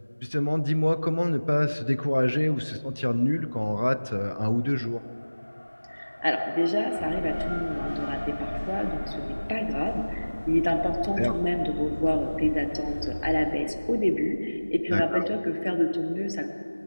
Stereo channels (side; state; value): both; inverted; correlation -1.00